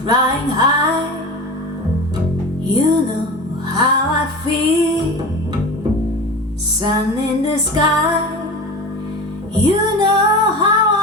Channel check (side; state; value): both; normal; correlation 0.31